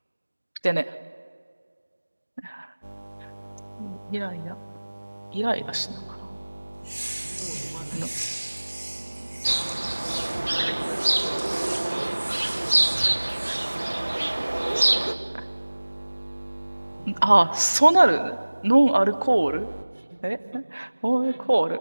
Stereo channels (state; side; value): inverted; both; correlation -1.00